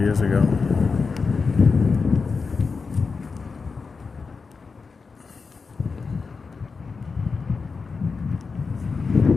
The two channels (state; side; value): quieter; right; 4.8 dB